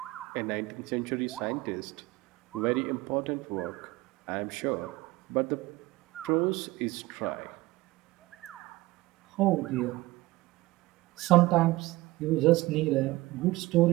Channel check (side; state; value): left; quieter; 19.8 dB